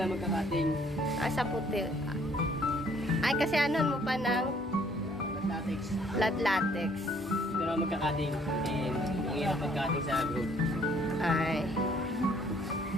magkakating. Sa puti. Ay, kasi ano mo pa ng Latex. latex. Ito na magkakating. And ang hirap magkakating sa group. Ay.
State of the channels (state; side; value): normal; both; correlation 0.63